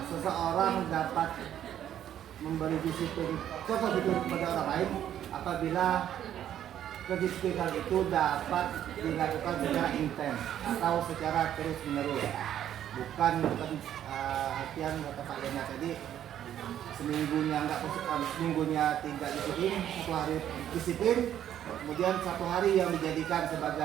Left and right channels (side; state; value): left; quieter; 10.7 dB